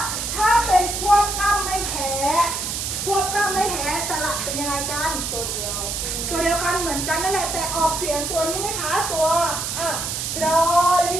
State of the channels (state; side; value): noise; right; hiss, 3 dB below the sound